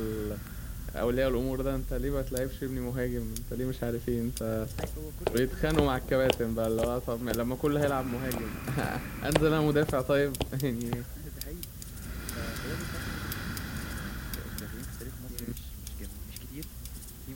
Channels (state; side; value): identical; both; correlation 1.00